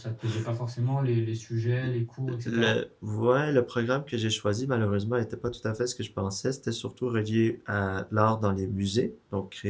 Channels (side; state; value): both; identical; correlation 1.00